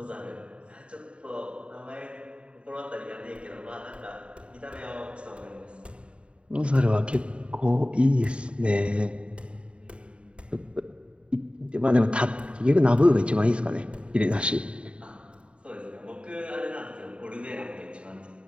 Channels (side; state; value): left; late; 0.057 ms